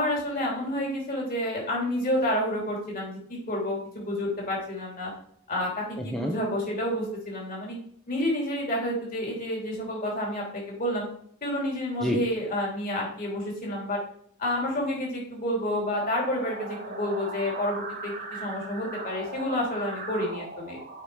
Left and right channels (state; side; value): normal; both; correlation 0.18